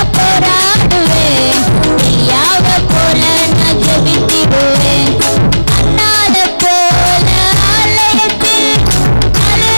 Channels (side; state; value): both; inverted; correlation -1.00